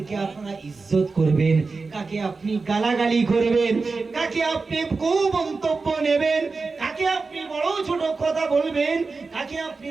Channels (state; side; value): quieter; left; 4.2 dB